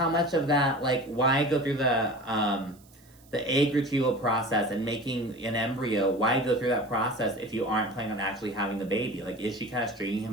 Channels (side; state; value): right; noise; hiss, 28 dB below the sound